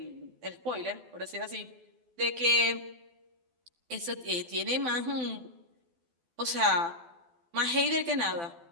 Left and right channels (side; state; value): left; late; 12 ms